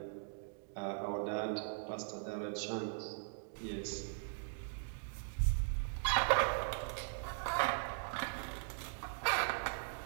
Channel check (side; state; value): left; silent; digital silence